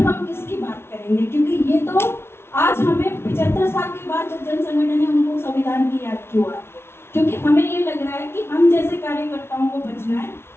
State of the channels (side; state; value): right; late; 0.12 ms